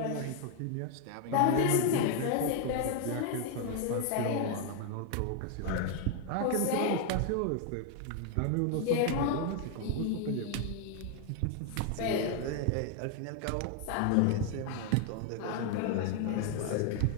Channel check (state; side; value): different; both; correlation 0.00